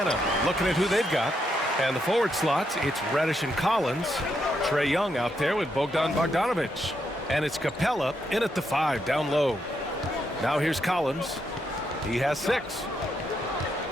looking at who they've got. And the forward slots, it's Reddish and Collins. Trae Young out there with Bogdan Bogdanovic. And it's Capella in at the 5 down low. Now here's Collins. He has 6.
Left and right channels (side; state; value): both; normal; correlation 0.79